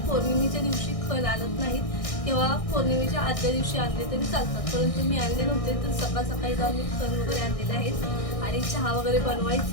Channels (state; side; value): late; right; 1.6 ms